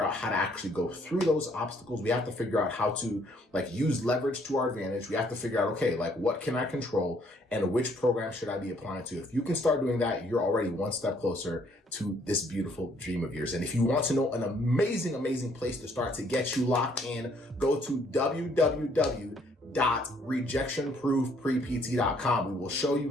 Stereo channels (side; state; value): both; normal; correlation 0.65